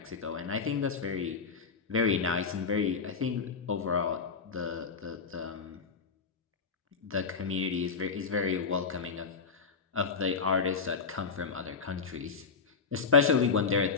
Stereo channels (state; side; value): quieter; right; 5.2 dB